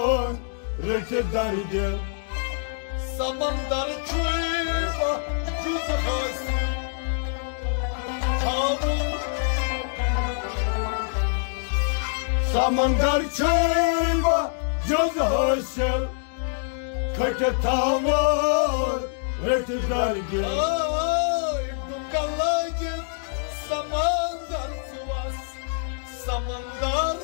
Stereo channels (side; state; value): right; silent; digital silence